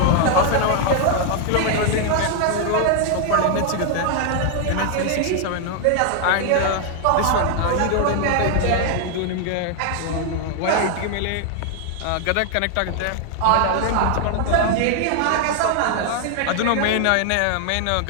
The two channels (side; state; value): both; different; correlation 0.00